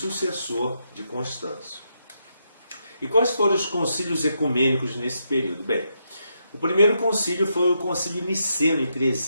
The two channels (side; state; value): both; inverted; correlation -0.81